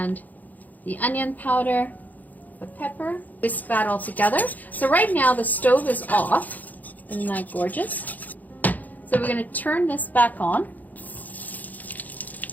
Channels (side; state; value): right; late; 0.081 ms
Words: the onion powder, the pepper. Whisk that all together. So right now the stove is off. Isn't that gorgeous? So we're going to turn this back on.